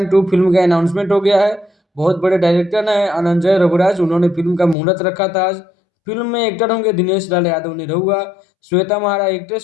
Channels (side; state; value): right; drops out; at 4.8 s